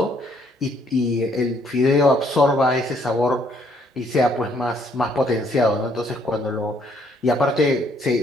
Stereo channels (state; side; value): normal; both; correlation 0.67